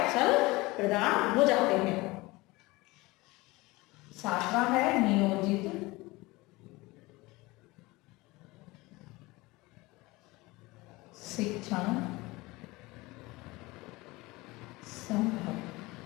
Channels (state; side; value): quieter; right; 21.9 dB